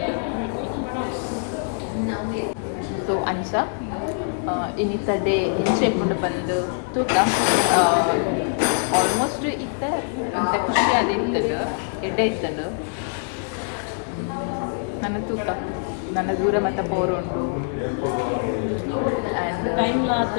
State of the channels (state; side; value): silent; right; 63 dB below the other